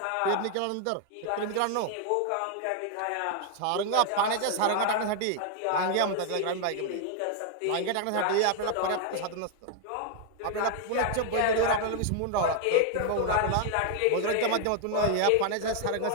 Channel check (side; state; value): both; different; correlation 0.00